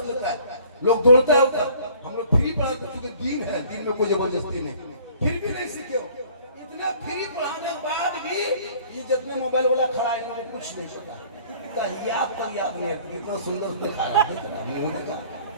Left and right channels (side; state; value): both; inverted; correlation -0.53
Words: लेता है। लोग दौड़ता है, हम लोग फ्री पढ़ा तो चूंकि दीन है, दीन में कोई जबरदस्ती नहीं, फिर भी नहीं सीखे हो। इतना फ्री पढ़ाने के बाद भी ये जितने मोबाइल वाला खड़ा है इन्होंने कुछ नहीं पता, याद नहीं, कितना सुंदर दिखा रहा